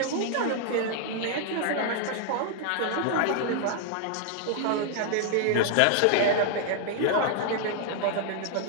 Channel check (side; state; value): both; different; correlation 0.00